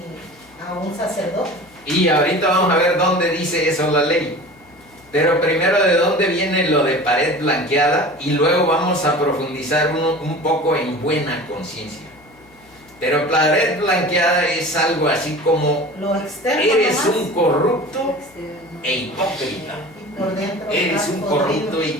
a un sacerdote. Y ahorita vamos a ver dónde dice eso la ley. Pero primero, de dónde viene lo de pared blanqueada, y luego vamos a profundizar un poco en buena conciencia. Pero pared blanqueada es algo así como: Lo externo eres nomás, un corrupto Externo. e hipócrita. y por dentro Eres estás un podrido. corrupto e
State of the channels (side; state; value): left; noise; hum, 29 dB below the sound